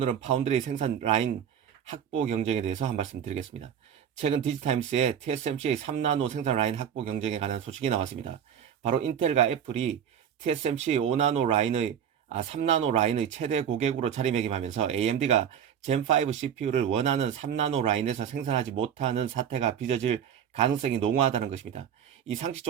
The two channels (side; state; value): left; quieter; 8.7 dB